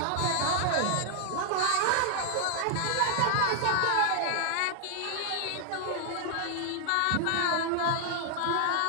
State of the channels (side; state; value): both; different; correlation 0.00